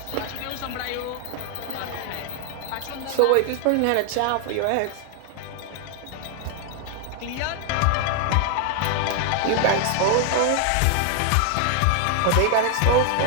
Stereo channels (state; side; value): different; both; correlation 0.00